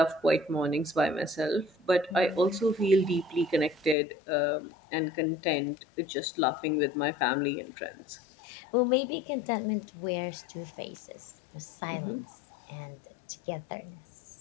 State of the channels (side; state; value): right; drops out; at 4.0 s